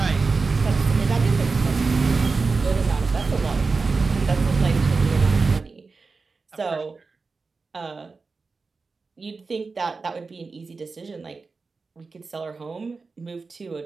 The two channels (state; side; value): quieter; left; 4.3 dB